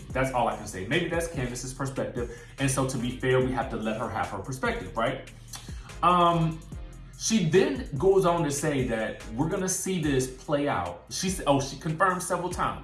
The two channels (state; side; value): identical; both; correlation 1.00